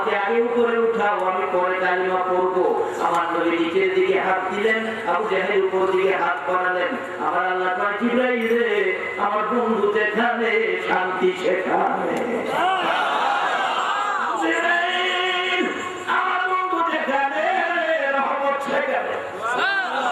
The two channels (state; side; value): identical; both; correlation 1.00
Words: আগে উপরে উঠাও আমি পরে কালিমা পড়বো আমার নবী নিচের দিকে হাত দিলেন আবু জাহেল উপর দিকে হাত বাড়ালেন আমার আল্লাহ কয় জিবরাইল রে আমার বন্ধু যেখানে শান্তি সেখানে জিবরাইল আমার বন্ধু যেখানে রহমত সেখানে